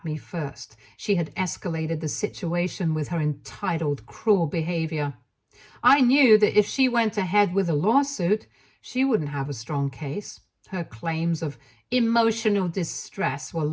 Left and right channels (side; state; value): both; identical; correlation 1.00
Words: me first. She had escalated the situation with her entitled, cruel behavior. I knew that if she went ahead with a lawsuit, she wouldn't have a strong case. Her claims of emotional distress were